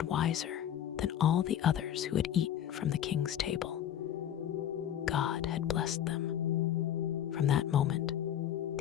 wiser than all the others who had eaten from the king's table. God had blessed them. From that moment,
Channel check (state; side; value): quieter; right; 10.5 dB